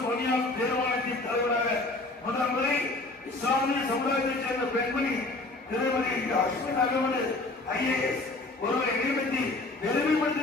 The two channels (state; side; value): quieter; right; 3.0 dB